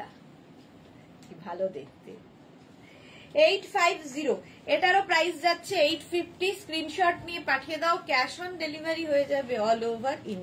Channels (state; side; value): identical; both; correlation 1.00